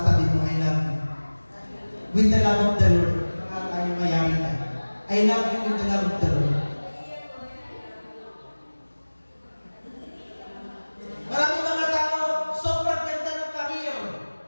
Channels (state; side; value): inverted; both; correlation -1.00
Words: mo, I love you. With the love of the Lord. Baka tayo mayaman na. I love you with the love of the Lord. Maraming mga tao, sobrang ganda ng career.